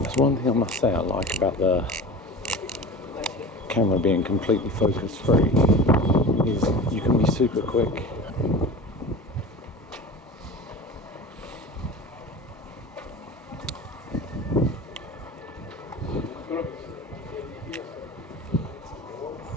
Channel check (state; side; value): normal; both; correlation 0.34